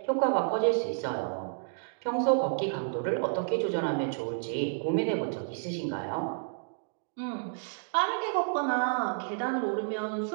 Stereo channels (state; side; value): silent; left; digital silence